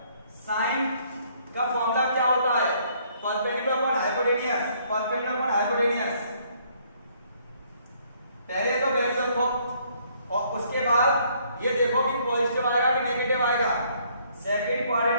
sin का फॉर्मूला क्या होता है, perpendicular upon hypotenuse, perpendicular upon hypotenuse. पहले तो वैल्यू रखो और उसके बाद ये देखो कि पॉजिटिव आएगा कि नेगेटिव आएगा। सेकंड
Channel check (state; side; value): inverted; both; correlation -0.65